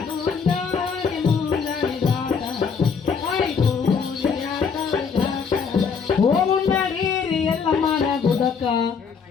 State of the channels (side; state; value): right; quieter; 6.0 dB